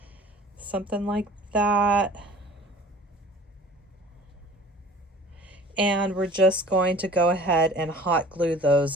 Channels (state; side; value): normal; both; correlation 0.47